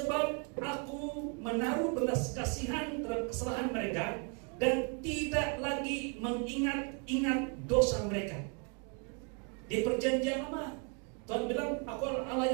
aku menaruh belas kasihan terhadap kesalahan mereka dan tidak lagi mengingat-ingat dosa mereka. Di perjanjian lama, Tuhan bilang, aku adalah Allah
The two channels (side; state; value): left; quieter; 36.1 dB